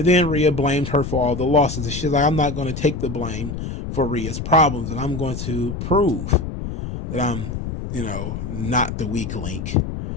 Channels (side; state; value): left; noise; rumble, 6 dB below the sound